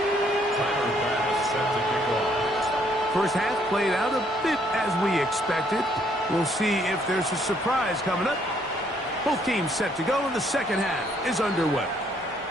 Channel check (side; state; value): both; normal; correlation 0.67